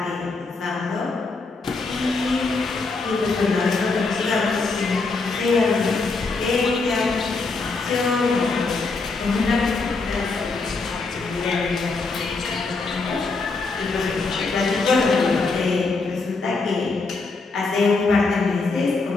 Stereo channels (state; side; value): quieter; right; 3.9 dB